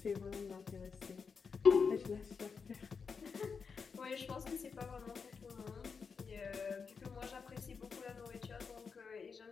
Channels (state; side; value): quieter; right; 5.6 dB